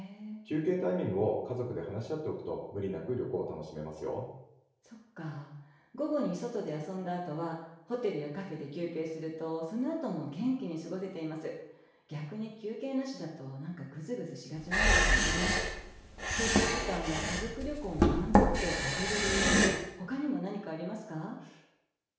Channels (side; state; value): both; identical; correlation 1.00